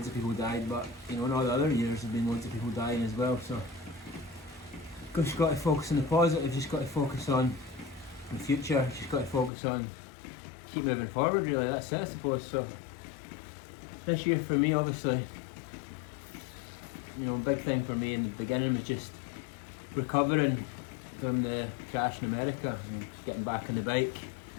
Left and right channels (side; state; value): right; drops out; at 9.5 s